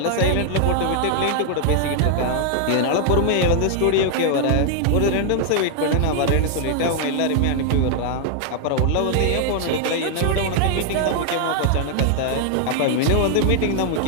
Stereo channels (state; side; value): different; both; correlation 0.00